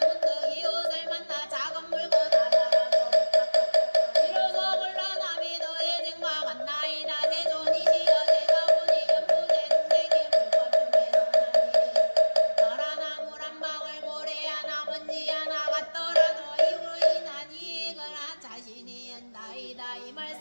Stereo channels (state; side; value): inverted; both; correlation -1.00